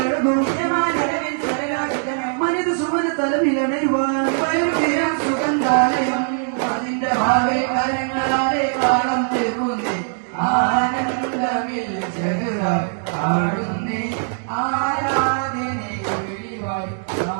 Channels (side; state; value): left; silent; digital silence